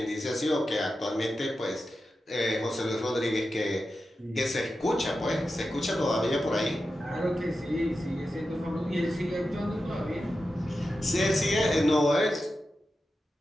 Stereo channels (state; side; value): normal; both; correlation 0.91